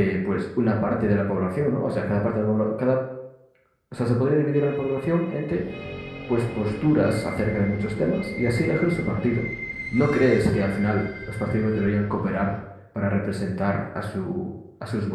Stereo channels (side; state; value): both; identical; correlation 1.00